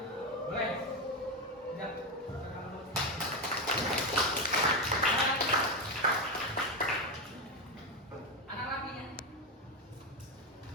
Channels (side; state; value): both; normal; correlation 0.12